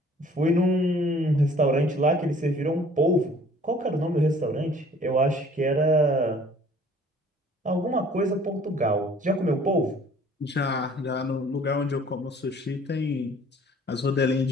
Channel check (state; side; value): normal; both; correlation 0.54